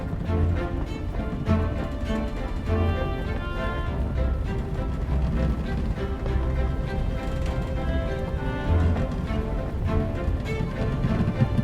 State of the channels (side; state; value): both; identical; correlation 1.00